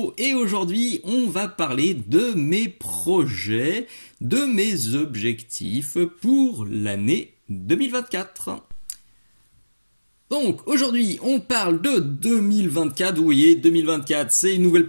et aujourd'hui on va parler de mes projets, de mes objectifs pour l'année 2024. Donc aujourd'hui on parle de 2024, vous voyez 2024 c'est une nouvelle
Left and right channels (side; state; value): both; inverted; correlation -1.00